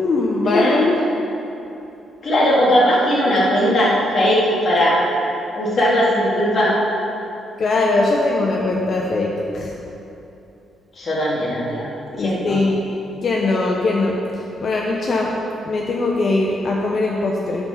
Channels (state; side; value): normal; both; correlation 0.76